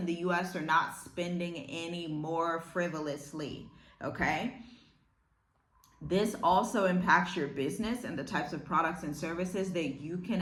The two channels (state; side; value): identical; both; correlation 1.00